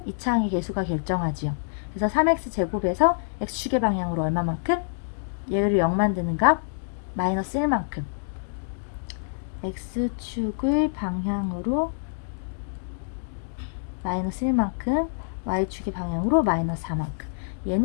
2차항의 개수가 결정하지요. 그래서 3x제곱에서 x축의 방향으로 얼마만큼? 얘를 0 만드는 값 마이너스 1만큼. x축의 방향으로 마이너스 1만큼, y축의 방향으로 마이너스 4만큼.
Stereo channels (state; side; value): silent; right; digital silence